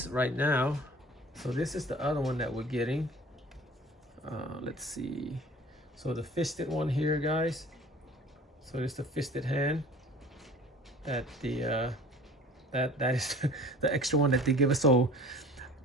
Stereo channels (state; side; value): normal; both; correlation 0.45